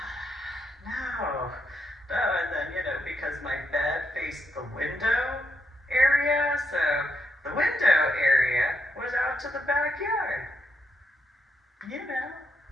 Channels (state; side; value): normal; both; correlation 0.79